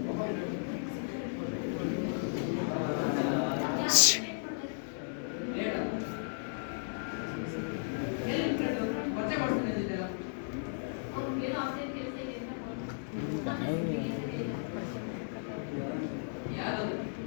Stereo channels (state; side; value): silent; right; 55 dB below the other